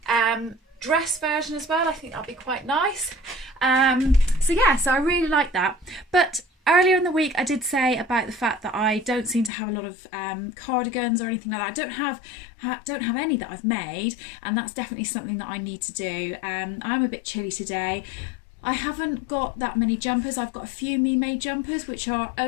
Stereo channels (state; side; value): drops out; right; at 9.5 s